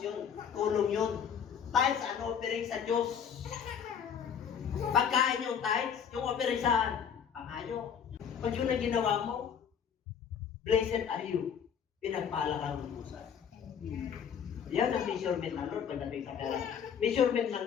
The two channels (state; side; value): quieter; right; 7.7 dB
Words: yun. Tulong yun. Tithes and offering sa Diyos. Pagkain yung tithes, yung offering saan? Pangayo. Pag yun ang ginawa mo, blessed are you. Pinagpala kang lubusan. Yan ang measurement ng Lord pagdating sa pera. Measurement ng